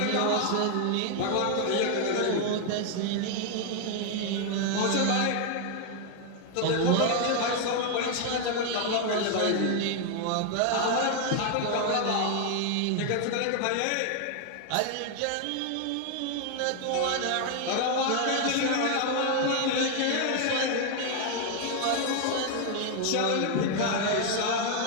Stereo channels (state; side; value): different; both; correlation 0.00